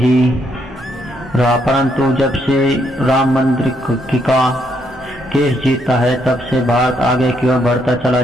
रहा, परंतु जब से राम मंदिर का केस जीता है, तब से भारत आगे की ओर बढ़ता चला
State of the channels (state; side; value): normal; both; correlation 0.74